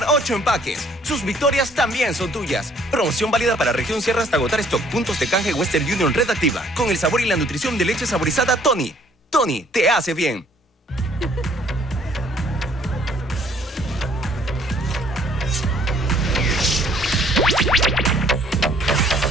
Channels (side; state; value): both; normal; correlation 0.61